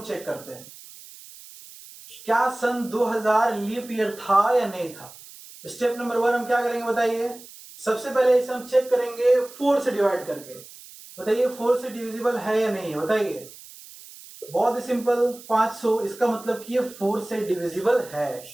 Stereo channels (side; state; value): right; noise; hiss, 18 dB below the sound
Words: चेक करते हैं, क्या सन 2000 लीप ईयर था या नहीं था। स्टेप नंबर 1 हम क्या करेंगे बताइए। सबसे पहले इसे हम चेक करेंगे 4 से डिवाइड करके। बताइए 4 से डिविजिबल है या नहीं है, बताइए। बहुत ही सिंपल, 500, इसका मतलब कि ये 4 से डिविजिबल है।